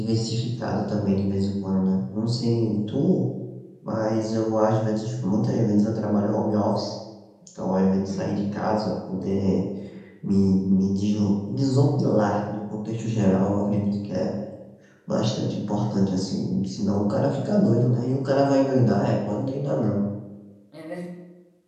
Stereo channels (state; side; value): identical; both; correlation 1.00